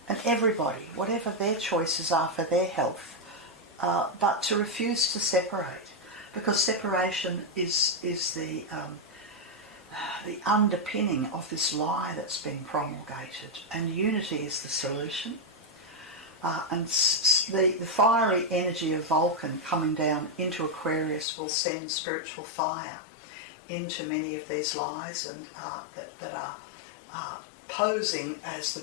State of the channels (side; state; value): right; drops out; at 21.2 s